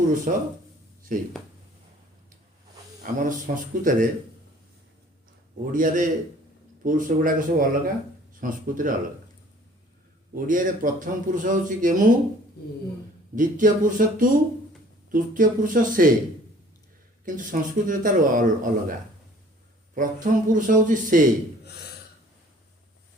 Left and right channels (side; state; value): both; normal; correlation 0.53